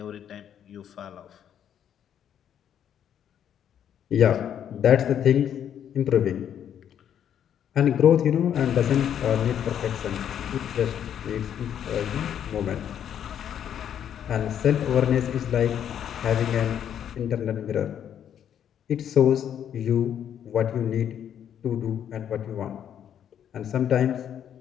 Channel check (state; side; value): quieter; right; 9.4 dB